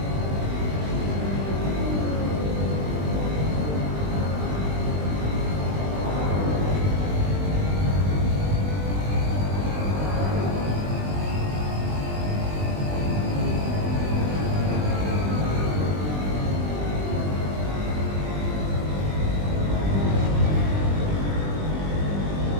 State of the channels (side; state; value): left; late; 20 ms